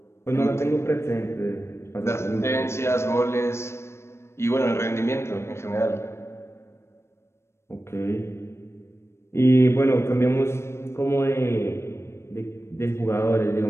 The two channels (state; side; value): late; right; 0.13 ms